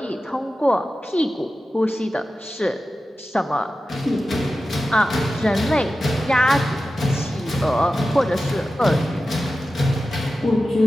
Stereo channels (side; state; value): both; normal; correlation 0.93